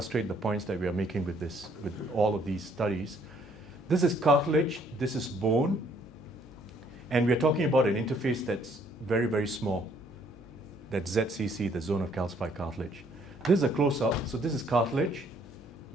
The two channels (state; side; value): normal; both; correlation 0.65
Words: the points that we are making with all of these studies. This is cartilage, this is bone, and we're talking about an interface that's very, very small. That's ZCC, the zone of calcified cartilage. This is a close-up, so this is cartilage,